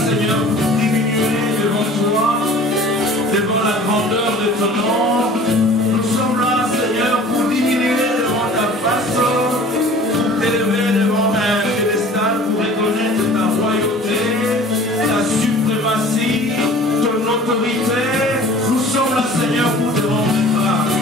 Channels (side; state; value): both; normal; correlation 0.46